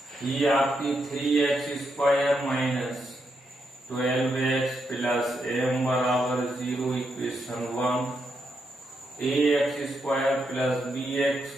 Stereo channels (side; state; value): both; normal; correlation 0.81